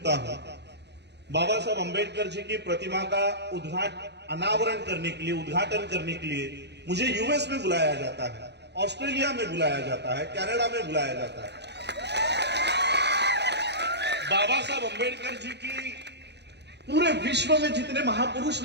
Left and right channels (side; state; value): left; late; 0.50 ms